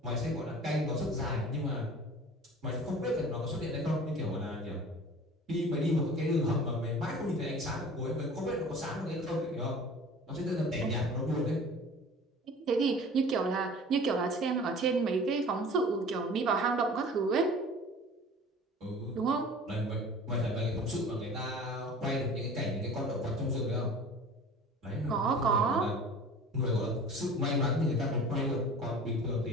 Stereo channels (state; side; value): normal; both; correlation 0.42